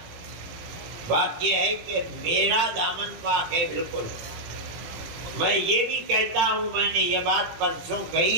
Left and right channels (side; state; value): left; late; 18 ms